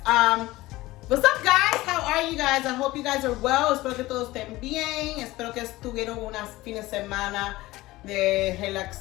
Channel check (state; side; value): quieter; right; 18.5 dB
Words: What's up, guys? How are you guys? I hope you guys are well. Espero que todos estén bien. Espero que estuvieron unas fines de semana de